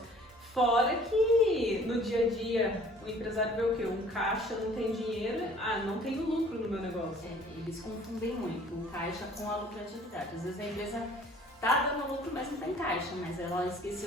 Fora que no dia a dia o empresário vê o quê? Um caixa, não tem dinheiro, não tenho lucro no meu negócio. Eles confundem muito o caixa com a lucratividade. Às vezes a empresa tá dando lucro, mas não tem caixa, mas ela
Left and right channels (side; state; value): both; normal; correlation 0.53